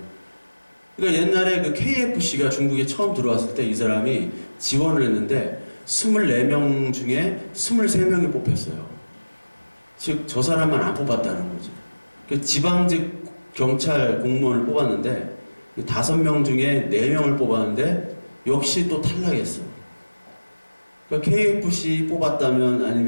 그러니까 옛날에 그 KFC가 중국에 처음 들어왔을 때 이 사람이 지원을 했는데 24명 중에 23명이 뽑혔어요. 즉, 저 사람만 안 뽑았다는 거죠. 그러니까 지방직 경찰 공무원을 뽑았는데 5명 중에 4명을 뽑았는데 역시 또 탈락했어요. 그러니까 KFC 뽑았다면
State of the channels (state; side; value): inverted; both; correlation -1.00